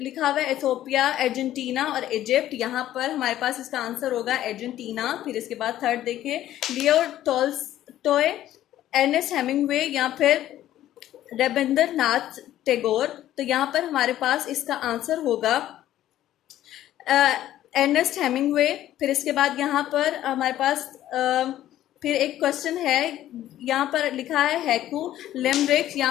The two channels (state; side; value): quieter; right; 13.0 dB